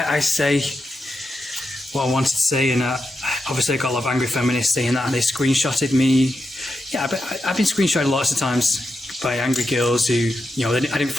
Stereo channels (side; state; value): both; normal; correlation 0.87